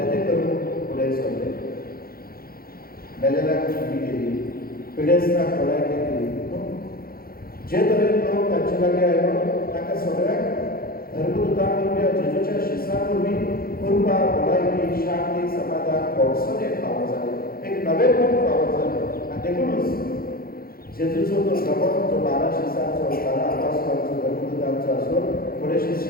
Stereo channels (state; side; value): late; right; 0.43 ms